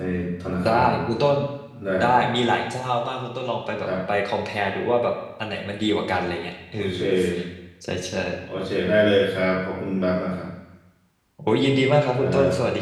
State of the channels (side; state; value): both; identical; correlation 1.00